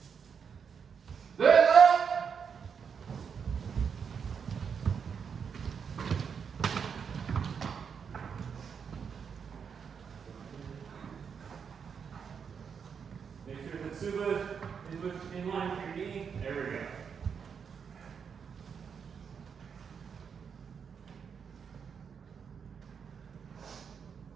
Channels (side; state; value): left; quieter; 6.7 dB